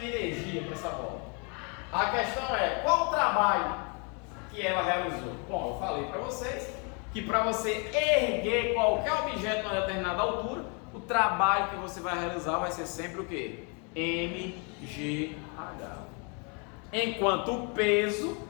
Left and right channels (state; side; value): quieter; right; 35.5 dB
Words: energia para essa bola. A questão é, qual o trabalho que ela realizou? Bom, eu falei para vocês que para você erguer qualquer objeto a uma determinada altura, o trabalho que você vai realizar vai ser sempre o quê? MGH. Enquanto o peso,